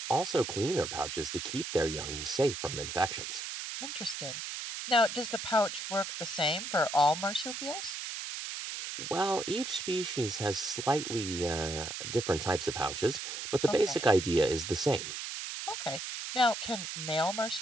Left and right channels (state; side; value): noise; right; hiss, 6 dB below the sound